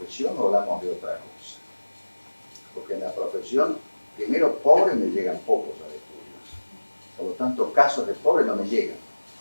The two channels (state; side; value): inverted; both; correlation -1.00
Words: o hablamos de otra cosa? Porque en la profesión, primero, pobres me llegan pocos a estudios. Por lo tanto, casos de pobres no me llegan.